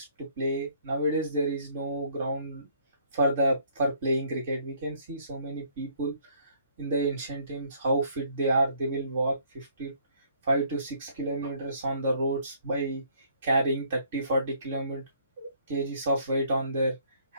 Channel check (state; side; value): inverted; both; correlation -0.62